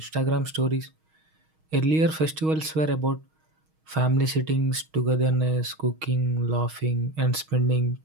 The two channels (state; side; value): late; left; 6.4 ms